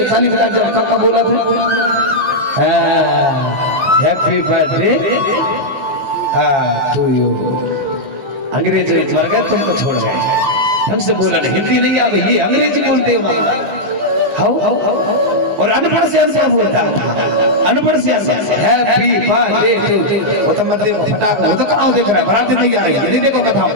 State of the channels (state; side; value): late; left; 15 ms